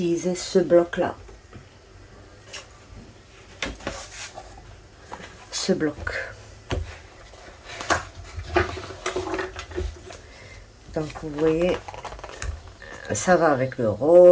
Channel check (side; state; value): both; identical; correlation 1.00